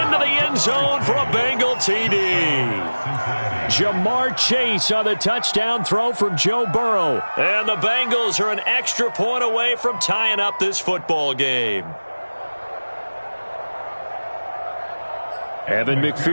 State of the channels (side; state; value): both; inverted; correlation -1.00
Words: the end zone for a Bengal TD. Jamar Chase on the touchdown throw from Joe Burrow. And the Bengals are an extra point away from tying up this football game. Evan